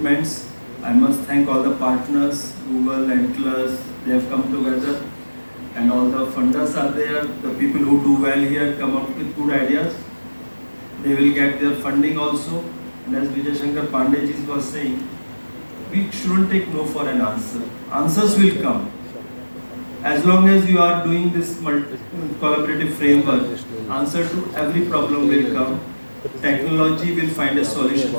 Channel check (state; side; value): inverted; both; correlation -1.00